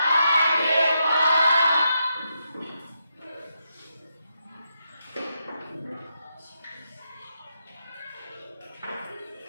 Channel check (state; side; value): inverted; both; correlation -0.83